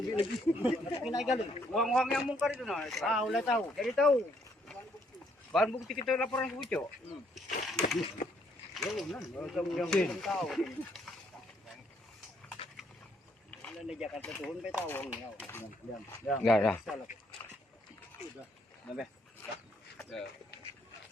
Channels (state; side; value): normal; both; correlation 0.69